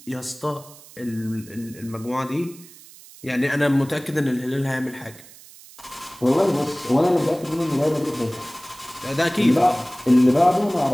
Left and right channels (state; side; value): noise; right; hiss, 21 dB below the sound